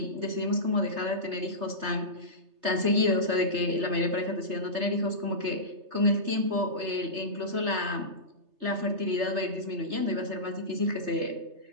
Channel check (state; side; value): late; left; 3.3 ms